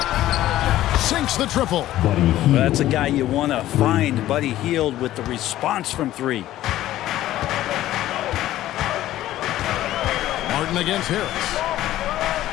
Sinks the triple. Well, that's a guy you want to find, Buddy Hield, with the response from three. Martin against Harris.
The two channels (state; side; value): quieter; right; 14.2 dB